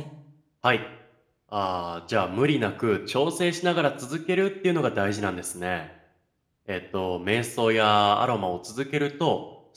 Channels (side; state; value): both; identical; correlation 1.00